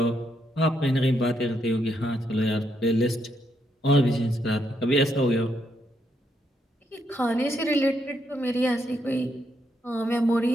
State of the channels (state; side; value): normal; both; correlation 0.77